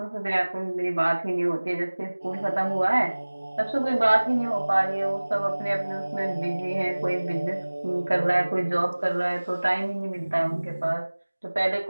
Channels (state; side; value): inverted; both; correlation -1.00